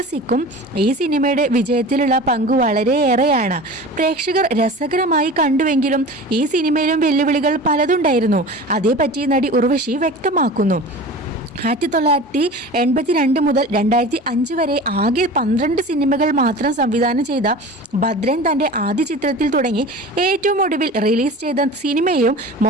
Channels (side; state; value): both; normal; correlation 0.36